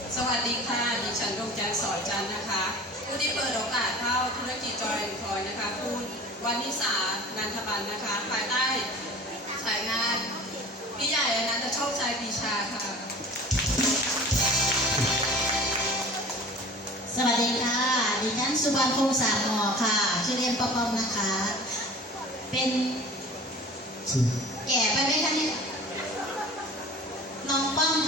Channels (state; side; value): normal; both; correlation 0.42